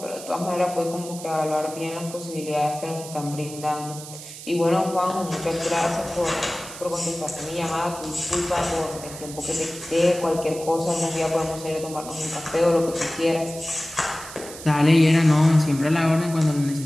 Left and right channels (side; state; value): right; noise; hiss, 13 dB below the sound